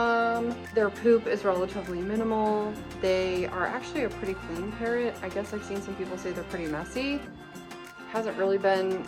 Their poop is relatively minimal. They are actually a pretty clean parrot. I guess I've seen some people say they're pretty messy. Hasn't really been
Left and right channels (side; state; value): both; identical; correlation 1.00